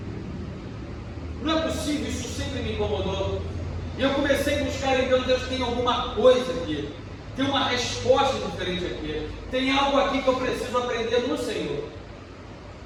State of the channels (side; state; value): both; identical; correlation 1.00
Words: Não é possível, isso sempre me incomodou. E eu comecei a buscar em Deus, Deus tem alguma coisa aqui, tem uma resposta diferente aqui, tem algo aqui que eu preciso aprender no Senhor.